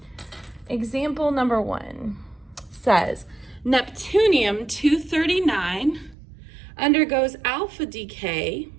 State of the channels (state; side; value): drops out; left; at 6.2 s